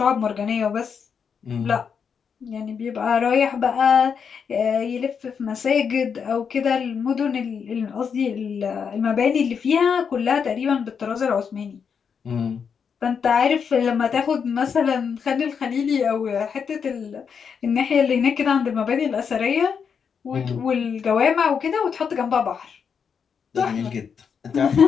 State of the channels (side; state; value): right; quieter; 6.6 dB